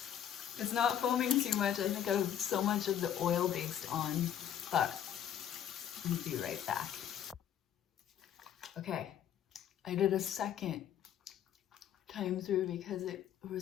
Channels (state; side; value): quieter; right; 9.9 dB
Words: It's not foaming too much. I think I have so much of the oil based on, but I'll be right back. Okay, I did a second time through because it